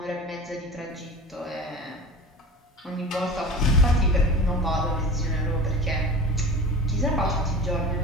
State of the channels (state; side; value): normal; both; correlation 0.36